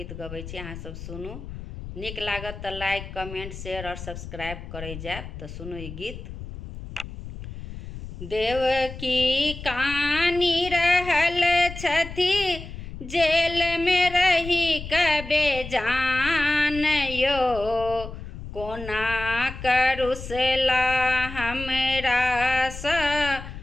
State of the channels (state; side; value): noise; left; rumble, 11 dB below the sound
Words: गबै छी, अहाँ सब सुनू। नीक लागत तऽ लाइक कमेंट शेयर और सब्सक्राइब करै जायब। तऽ सुनू ई गीत। देवकी कानी रहल छथि जेल में रही कबे जान यो, कोना करुसला हमरा सा